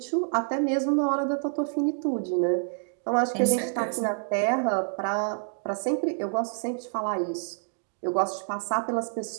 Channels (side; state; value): left; silent; 60 dB below the other